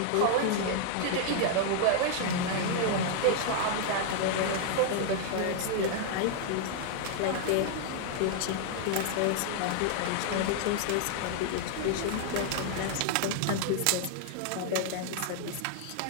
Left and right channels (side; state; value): both; different; correlation 0.00